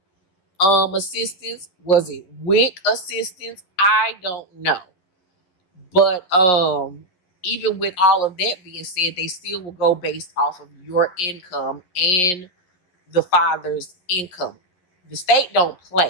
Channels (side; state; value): right; late; 11 ms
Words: assistance, was it WIC assistance? I don't know. But even with all of that being said, they still will go based off of your income and the father's income. The state don't